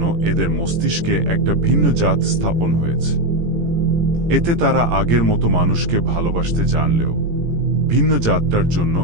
এদের মস্তিষ্কে একটা ভিন্ন জাত স্থাপন হয়েছে। এতে তারা আগের মতো মানুষকে ভালোবাসতে জানলেও ভিন্ন জাতটার জন্য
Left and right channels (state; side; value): late; left; 17 ms